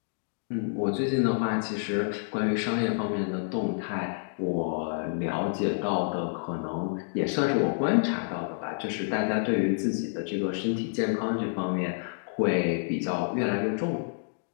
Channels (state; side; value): silent; right; digital silence